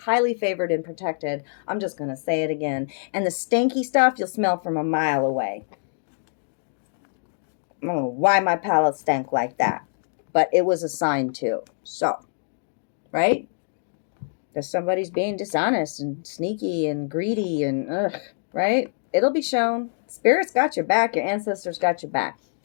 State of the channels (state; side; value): silent; right; digital silence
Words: favored and protected. I'm just going to say it again. And the stanky stuff you'll smell from a mile away. I don't know why my palate stank like that, but it was a sign too. So, right? Because somebody's being dishonest and sneaky and greedy and right? It'll be shown. Spirit's got your back. Your ancestors got your back.